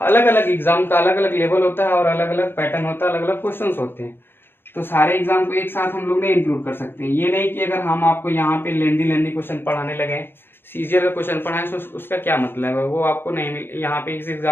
अलग अलग एग्जाम का अलग अलग लेवल होता है और अलग अलग पैटर्न होता है, अलग अलग क्वेश्चन होते हैं। तो सारे एग्जाम को एक साथ हम लोग नहीं इंक्लूड कर सकते। ये नहीं कि अगर हम आपको यहाँ पे लेंदी क्वेश्चन पढ़ाने लगे, सीजीएल का क्वेश्चन पढ़ाएं तो उसका क्या मतलब है, वो आपको नहीं मिल यहाँ पे इस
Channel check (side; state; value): right; late; 0.10 ms